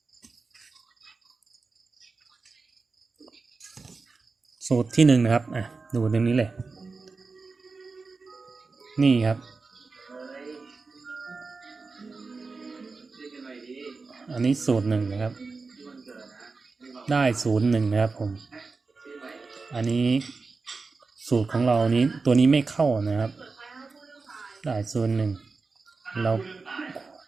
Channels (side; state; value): left; quieter; 4.2 dB